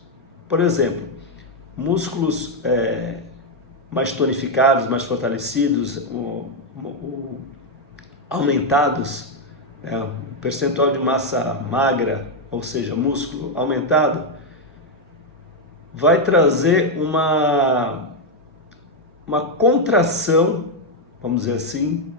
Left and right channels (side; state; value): both; normal; correlation 0.02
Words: Por exemplo, músculos mais tonificados, mais fortalecidos, aumentados, o percentual de massa magra, ou seja, músculo aumentado, vai trazer uma contração, vamos dizer assim,